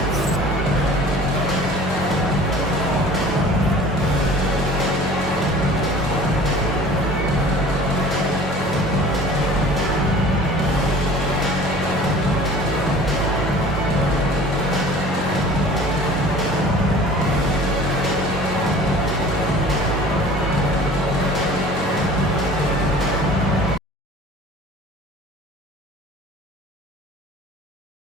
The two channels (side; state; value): both; normal; correlation 0.45